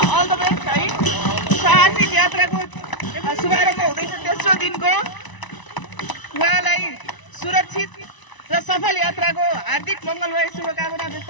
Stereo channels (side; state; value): right; late; 1.0 ms